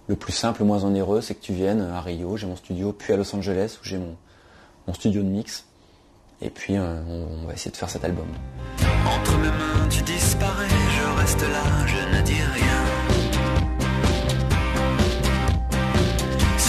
le plus simple, le moins onéreux, c'est que tu viennes à Rio, j'ai mon studio, puis à Los Angeles où j'ai mon studio de mix. Et puis on va essayer de faire cet album. Entre mes mains tu disparais, je reste là, je ne dis rien.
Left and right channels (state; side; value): identical; both; correlation 1.00